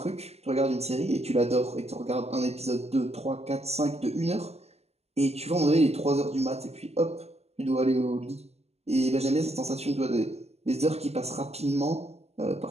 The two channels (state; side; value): late; left; 0.30 ms